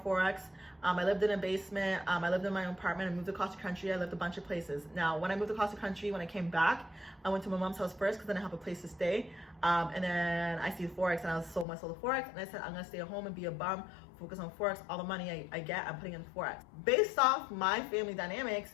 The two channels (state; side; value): drops out; right; at 11.7 s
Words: I lived in a basement. I lived in my own apartment. I moved across the country. I lived a bunch of places. Now, when I moved across the country, when I came back, I went to my mom's house first because then I have a place to stay. And then I see Forex, and I sold my soul to Forex, and I said, I'm gonna stay at home and be a bum, focus on Forex. All the money I get, I'm putting in Forex. Based off my family dynamics,